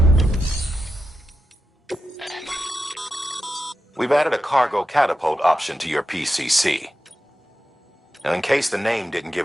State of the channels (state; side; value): normal; both; correlation 0.89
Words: We've added a cargo catapult option to your PCC. Now, in case the name didn't